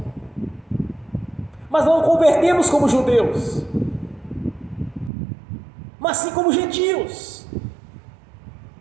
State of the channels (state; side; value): drops out; left; at 5.1 s